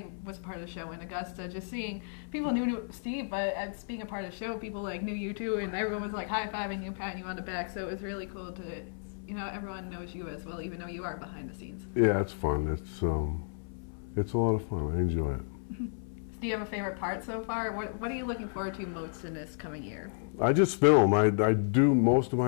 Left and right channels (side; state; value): right; silent; 56 dB below the other